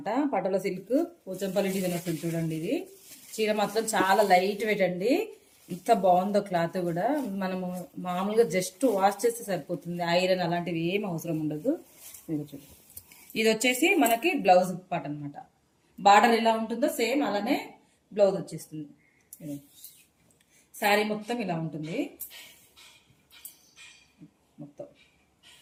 పటోలా సిల్క్ పోచంపల్లి డిజైన్ వస్తుంది చూడండి. ఇది చీర మాత్రం చాలా లైట్ వెయిట్ అండి. ఇంత బాగుందో క్లాత్ కూడా. మనము మామూలుగా జస్ట్ వాష్ చేస్తే సరిపోతుంది. ఐరన్ అలాంటివి ఏం అవసరం ఉండదు. ఇది వచ్చేసి మనకి బ్లౌజ్ పార్ట్ అనమాట. బార్డర్ ఎలా ఉంటుందో సేమ్ అలానే బ్లౌజ్ వచ్చేస్తుంది. శారీ మొత్తం ఇలా ఉంటుంది. మొత్తం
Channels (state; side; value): identical; both; correlation 1.00